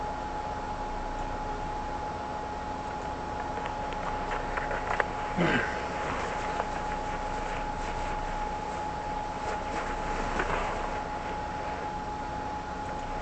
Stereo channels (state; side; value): identical; both; correlation 1.00